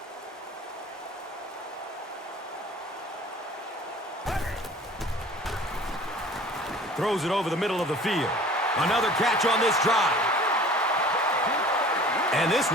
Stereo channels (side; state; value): both; normal; correlation 0.46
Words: Throws it over the middle of the field. Another catch on this drive. And this